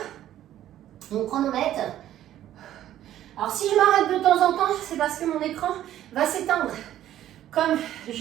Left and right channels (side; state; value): left; quieter; 12.4 dB